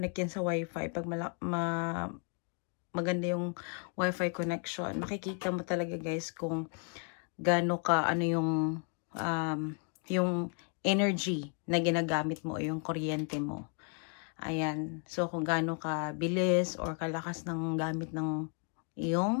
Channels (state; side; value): quieter; right; 39.6 dB